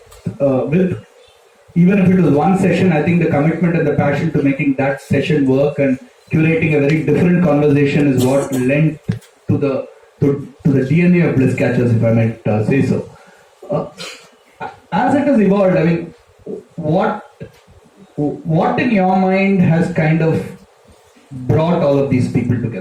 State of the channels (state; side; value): identical; both; correlation 1.00